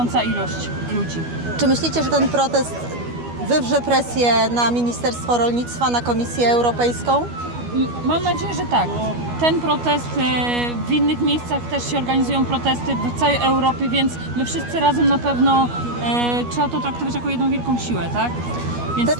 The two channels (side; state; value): left; late; 12 ms